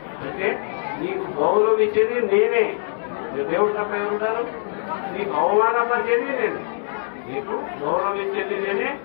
అంటే నీకు గౌరవించేది నేనే. దేవుడు తప్ప ఉంటారు, నీకు అవమానపరిచేది నేను. నీకు గౌరవించేది నేనే,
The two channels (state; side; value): silent; right; digital silence